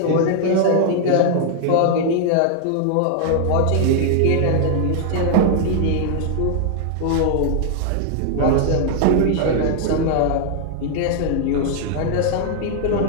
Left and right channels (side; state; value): both; different; correlation 0.00